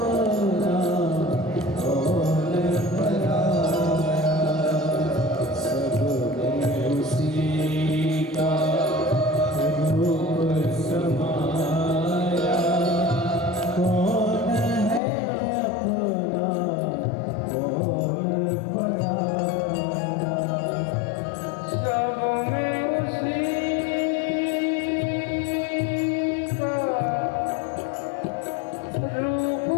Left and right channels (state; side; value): drops out; right; at 15.0 s